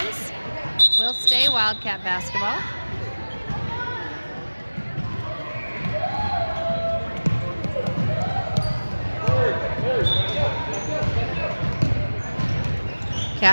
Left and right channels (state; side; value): inverted; both; correlation -1.00